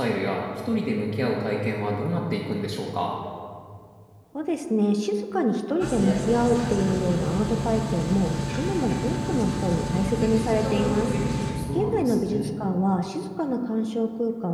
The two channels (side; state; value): both; identical; correlation 1.00